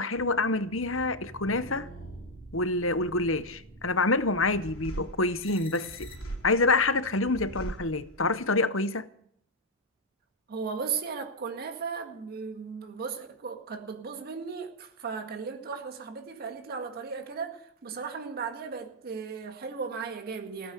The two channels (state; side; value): normal; both; correlation 0.01